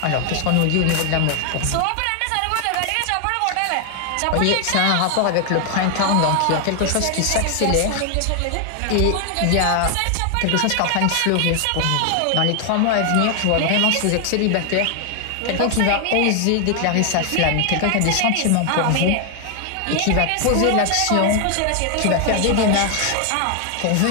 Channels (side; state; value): both; different; correlation 0.00